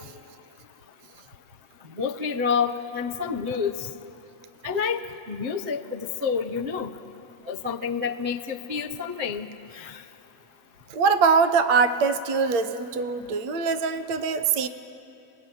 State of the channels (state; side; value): late; left; 8.6 ms